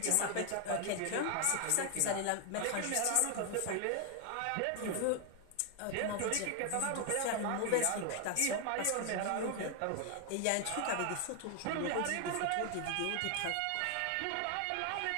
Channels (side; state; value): both; different; correlation 0.00